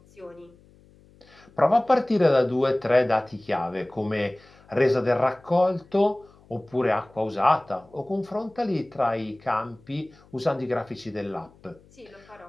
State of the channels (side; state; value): left; noise; hum, 28 dB below the sound